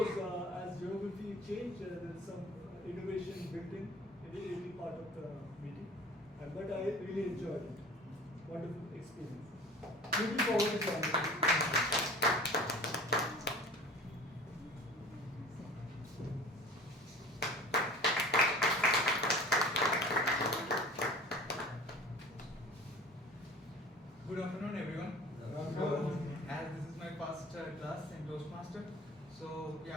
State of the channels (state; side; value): normal; both; correlation 0.42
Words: as geography changed, there is some innovation built in every part of the meeting, but I really enjoyed it. Wonderful experience. Looking forward to joining. Good afternoon, everyone. As this is my first class in Toastmaster, so